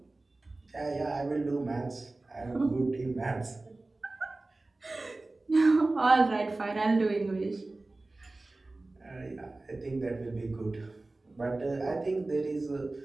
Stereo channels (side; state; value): left; quieter; 3.1 dB